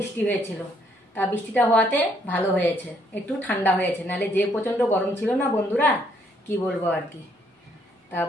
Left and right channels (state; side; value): normal; both; correlation 0.69